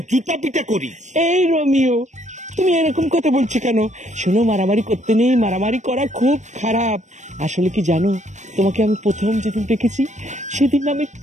জুতা পিটা করি। এই রোমিও, তুমি এরকম কথা বলছো কেন? শোনো, মারামারি করতে নেই, মারামারি করা খুব খারাপ। আসলে কি জানো, তোমাকে আমি প্রথম যেদিন দেখেছি সেদিন আমি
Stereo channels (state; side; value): late; left; 0.34 ms